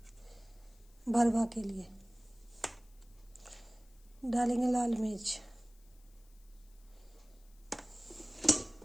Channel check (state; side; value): noise; left; hiss, 29 dB below the sound